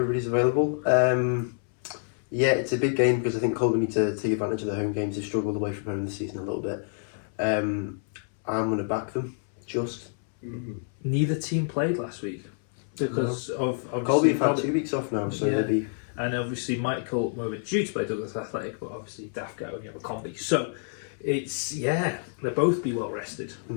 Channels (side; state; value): right; silent; 59 dB below the other